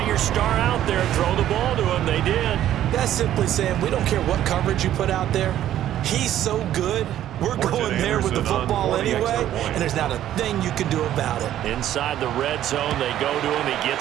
your star out there. Throw the ball to him. They did. That's simply saying we don't care what coverage you put out there. He's so good. We're going there with the football anyway, and there's not a thing you can do about it. Inside the red zone, they go to him. He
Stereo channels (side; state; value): left; quieter; 12.1 dB